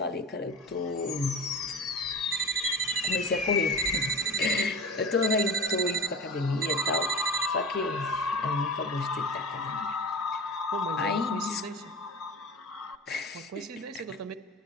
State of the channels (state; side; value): normal; both; correlation 0.31